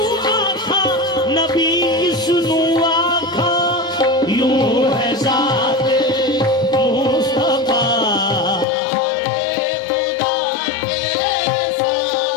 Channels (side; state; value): right; drops out; at 8.7 s